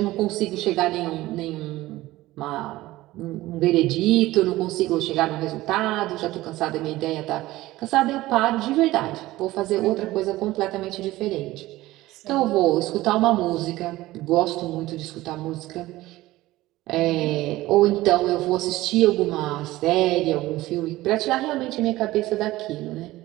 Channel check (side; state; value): left; quieter; 17.4 dB